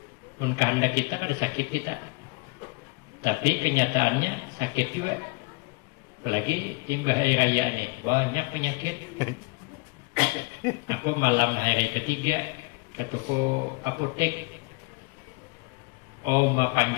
Mun kehendak kita kada sakit kita, tapi kenyataannya sakit juga. Apalagi timbah hari raya nih, banyak penyakit. Aku malam hari ketiga ke toko apotek,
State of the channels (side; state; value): right; quieter; 27.6 dB